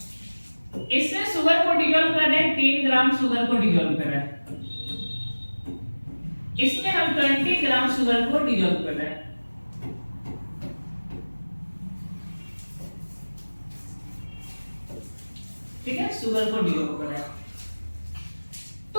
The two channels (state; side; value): inverted; both; correlation -1.00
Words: इसमें शुगर को डिसॉल्व कर रहे हैं, 3 ग्राम शुगर को डिसॉल्व कर रहे हैं, इसमें हम 20 ग्राम शुगर को डिसॉल्व कर रहे हैं। ठीक है, शुगर को डिसॉल्व कर रहे हैं, तो